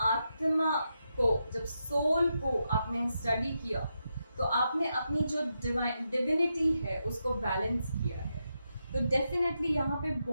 को, जब सोल को आपने स्टडी किया तो आपने अपनी जो डिविनिटी है उसको बैलेंस किया है. तो डेफिनेटली यहाँ पे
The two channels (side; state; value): both; inverted; correlation -0.85